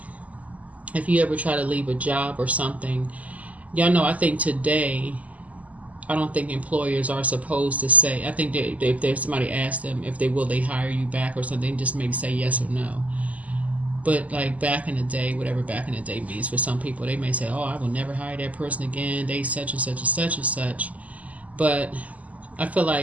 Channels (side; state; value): left; late; 0.073 ms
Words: if you ever try to leave a job or something, y'all know, I think today, I don't think employers are supposed to say, I think that if there's somebody asks them if they hire you back or something, just maybe say yes or no. But like back in the day, whatever back in the day means for some people, they may say, oh, I will never hire that person again. They such and such and such and such. But I feel